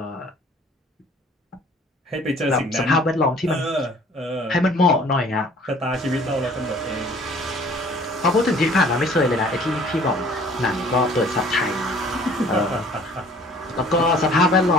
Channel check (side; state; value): both; normal; correlation 0.53